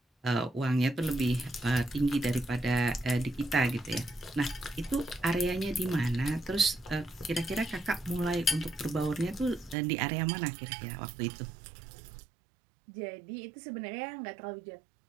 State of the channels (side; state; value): left; drops out; at 9.8 s